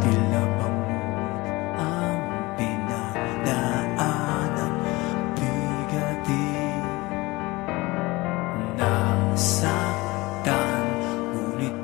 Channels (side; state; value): right; quieter; 21.8 dB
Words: tila bangod ang pinagdaanan, bigatin, nasaktan, ngunit